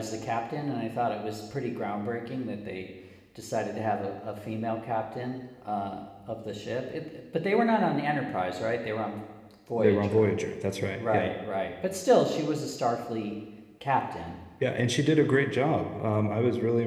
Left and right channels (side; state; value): both; identical; correlation 1.00